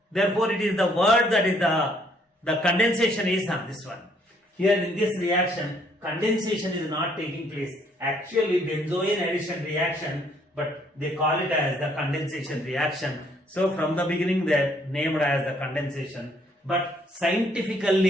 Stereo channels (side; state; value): both; normal; correlation 0.66